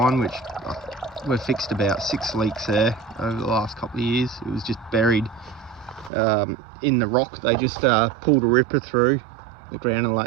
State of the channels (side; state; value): left; drops out; at 6.1 s